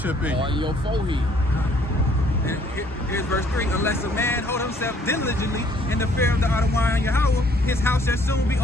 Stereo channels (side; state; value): both; normal; correlation 0.62